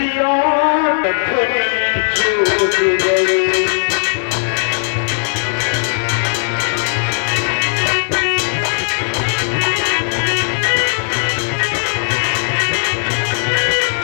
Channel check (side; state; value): right; silent; digital silence